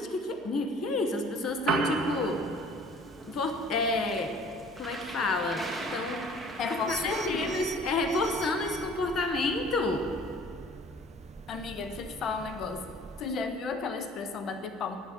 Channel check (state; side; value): noise; right; hum, 26 dB below the sound